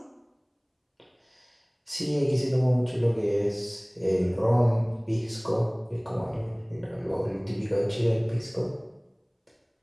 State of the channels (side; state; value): both; identical; correlation 1.00